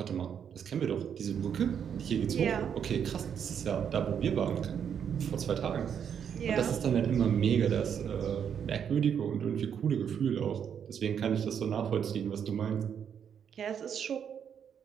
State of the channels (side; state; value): left; quieter; 8.1 dB